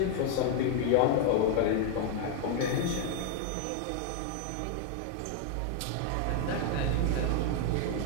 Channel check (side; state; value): both; different; correlation 0.00